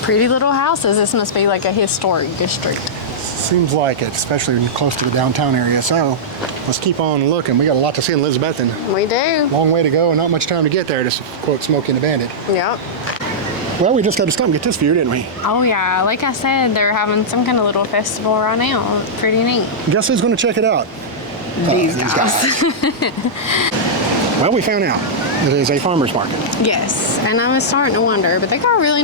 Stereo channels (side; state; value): both; normal; correlation -0.10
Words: Pretty little houses. This must be like a historic district. Seems like it, especially close to the downtown area. So let's keep on looking. We got a lot to see in Elizabethton. We do. Long way to go and not much time to get there, to quote Smokey and the Bandit. Yep. Well, we just had to stop and get this view, didn't we? Oh yeah, like I said, they're having some kind of little festival right now. It's pretty neat. Guess who's going to check it out? These guys. Well, we found out it is a farmer's market. Yes, and I was starting to wonder, but they got a really